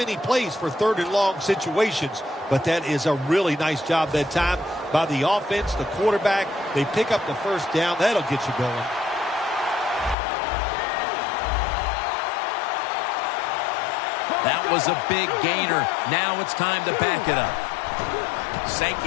plays for third and long situations, but that is a really nice job that time by the offense, the quarterback. They pick up the first down. That'll get you going. That was a big gainer. Now it's time to back it up.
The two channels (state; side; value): drops out; right; at 10.2 s